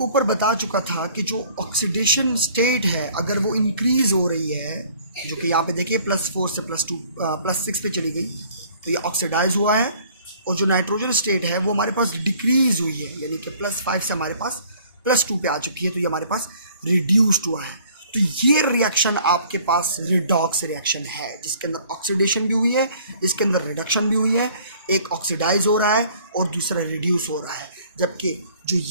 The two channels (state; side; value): inverted; both; correlation -0.56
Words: ऊपर बता चुका था कि जो ऑक्सीडेशन स्टेट है अगर वो इंक्रीज़ हो रही है, जो कि यहाँ पे देखिए +4 से +6 पे चली गई, तो ये ऑक्सीडाइज हुआ है। और जो नाइट्रोजन स्टेट है वो हमारे पास डिक्रीज़ हुई है, यानी कि +5 से हमारे पास +2 पे आ चुकी है, तो ये हमारे पास रिड्यूस्ड हुआ है। तो ये रिएक्शन आपके पास रिडॉक्स रिएक्शन है, जिसके अंदर ऑक्सीडेशन भी हुई है, इसके अंदर रिडक्शन भी हुई है। एक ऑक्सीडाइज हो रहा है और दूसरा रिड्यूस हो रहा है, जबकि जो